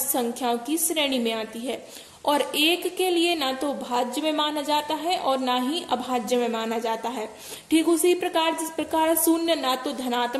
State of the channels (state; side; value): identical; both; correlation 1.00